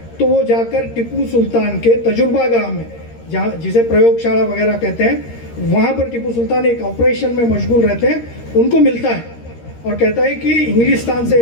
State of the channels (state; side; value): late; right; 13 ms